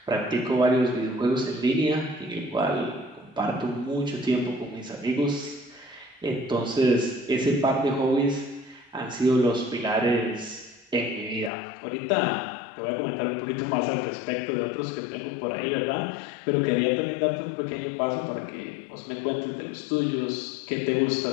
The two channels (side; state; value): right; drops out; at 11.5 s